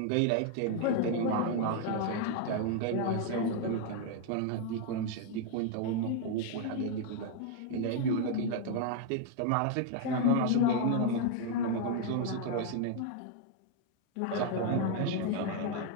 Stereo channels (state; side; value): different; both; correlation 0.00